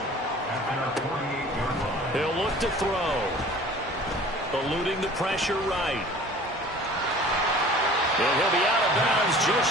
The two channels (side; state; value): both; normal; correlation 0.46